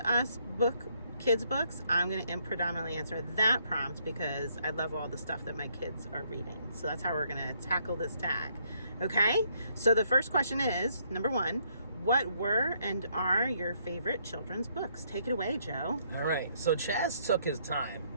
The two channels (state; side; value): inverted; both; correlation -0.70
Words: us kids books, I'm going to predominantly answer that prompt because I love all the stuff that my kids are reading. So that's how we're going to tackle this tag. Okay, so the first question is, number one, what were and are your favorite children's books? Take it away, Joe. All right, so Chaz took his time